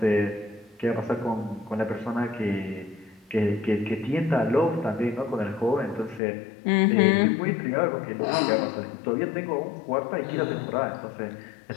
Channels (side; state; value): right; drops out; at 6.2 s